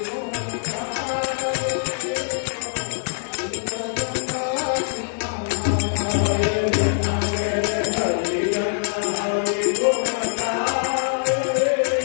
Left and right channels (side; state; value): right; silent; 63 dB below the other